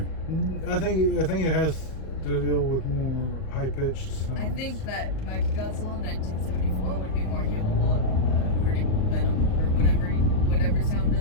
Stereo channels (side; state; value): right; late; 38 ms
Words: I think it has to deal with more high pitched sounds. I think that Mechagodzilla in 1974 would be more capable of hurting Venom or whatever sound